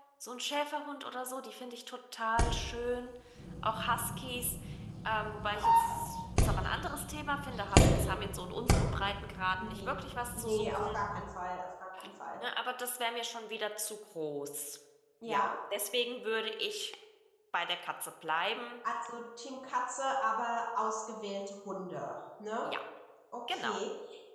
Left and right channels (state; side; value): identical; both; correlation 1.00